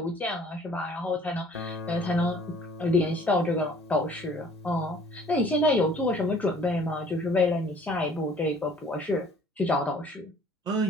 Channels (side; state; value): both; normal; correlation 0.54